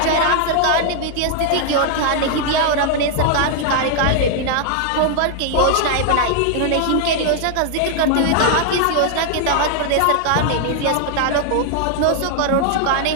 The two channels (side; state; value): both; different; correlation 0.00